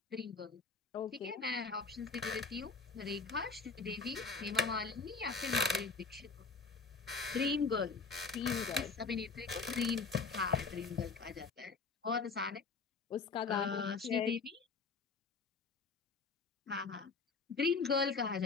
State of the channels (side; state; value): right; quieter; 4.6 dB